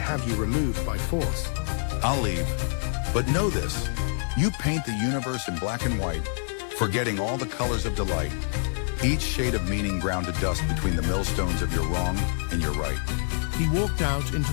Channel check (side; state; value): right; silent; digital silence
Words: you removed by force. I'll leave. But know this, you paint the universe in black and white, forgetting all the colors of delight, each shade of meaning ground to dust between the millstones of your wrong and your right. He walked out into